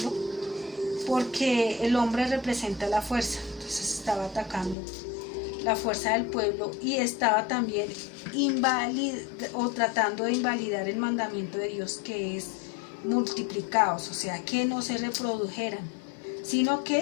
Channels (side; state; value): right; drops out; at 4.8 s